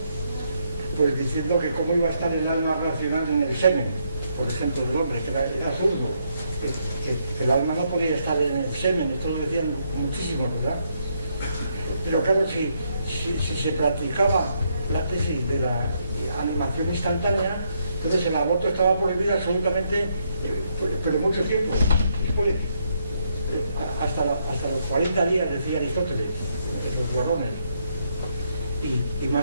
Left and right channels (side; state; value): both; inverted; correlation -0.75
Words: pues diciendo que cómo iba a estar el alma racional en el semen, por ejemplo, del hombre, que era absurdo, que el alma no podía estar en el semen, esto lo decían muchísimos, ¿verdad? Pero claro, si se practicaba la tesis de la animación instantánea, entonces el aborto estaba prohibido absolutamente, pero mucho tiempo después, hasta los 40 días, decía Aristóteles, los varones, y